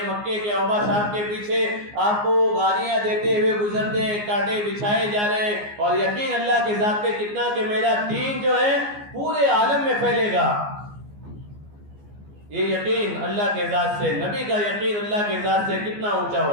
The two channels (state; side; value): late; left; 14 ms